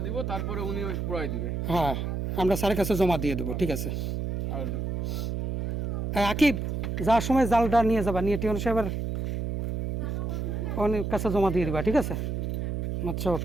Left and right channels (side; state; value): right; noise; hum, 2 dB below the sound